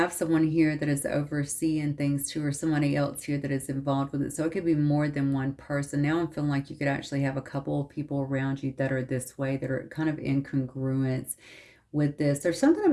someone here that is overseeing things too, or somebody else here that is involved with it. So it could be more than one person. Now I'm feeling like you could actually have a couple of people around you that are this way, that are kind of in congruence with this. There's something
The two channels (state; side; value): identical; both; correlation 1.00